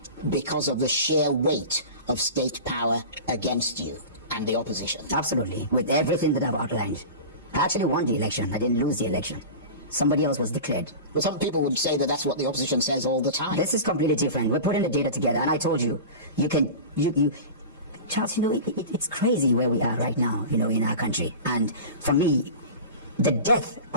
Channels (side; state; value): both; inverted; correlation -0.32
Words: because of the sheer weight of state power against you and the opposition? Absolutely, with everything that I've outlined. I actually won the election. I didn't lose the election. Somebody else was declared. But some people would say that that's what the opposition says all the time. This is completely different. We're putting the data together, and I told you, Charles, it's crazy where we are right now, in our country. And for me, the death